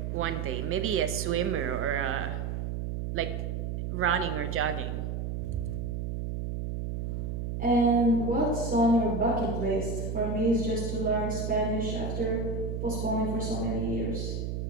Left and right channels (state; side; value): noise; right; hum, 3 dB below the sound